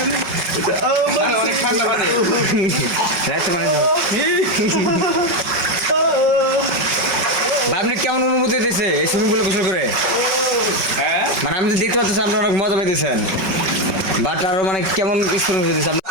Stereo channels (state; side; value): late; left; 5.4 ms